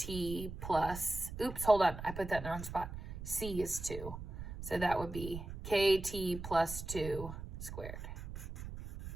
plus, oops, hold on, I put that in the wrong spot. C is 2. So that would be kt plus 2 squared.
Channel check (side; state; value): right; noise; rumble, 9 dB below the sound